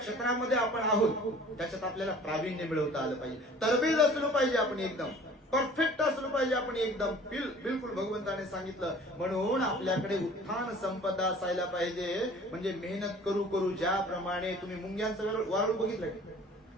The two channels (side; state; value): both; normal; correlation 0.48